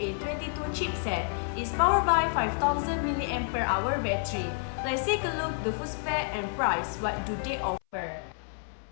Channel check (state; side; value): silent; right; 58 dB below the other